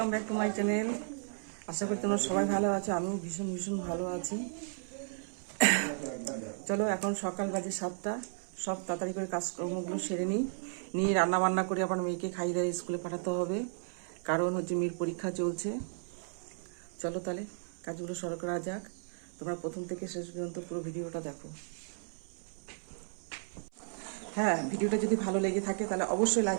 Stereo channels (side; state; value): left; silent; 55 dB below the other